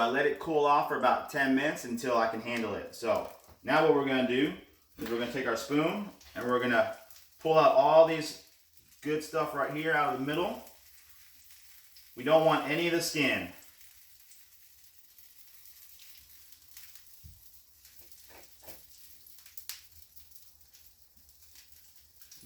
let it cool off for about 10 minutes until I can handle it. So now what we're going to do is we're going to take our spoon and we're going to pull out all these good stuff right here out of the middle. We don't want any of the skin.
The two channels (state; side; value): identical; both; correlation 1.00